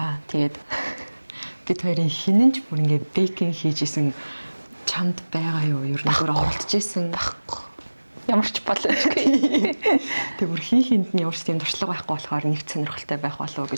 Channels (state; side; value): inverted; both; correlation -1.00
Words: тэгээд бид хоёрын хинэнч бүр ингээ бейкинг хийж исэн чамд байгаа юу? Ер нь бүр оролдож исэн байхгүй. Ямар ч боломжгүй. Тэг бүр хинт нь ямар ч тийм туршлага байхгүй болохоор нэг сонирхолтой байх болов уу